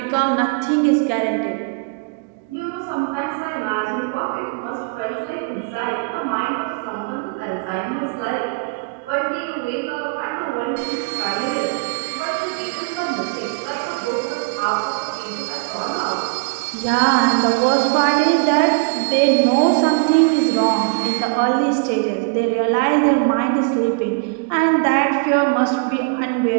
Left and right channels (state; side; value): quieter; left; 33.2 dB